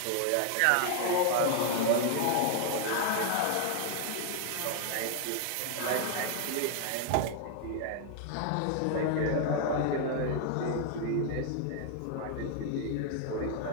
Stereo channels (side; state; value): both; different; correlation 0.00